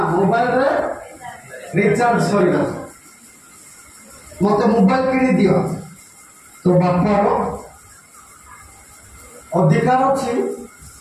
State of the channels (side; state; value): both; identical; correlation 1.00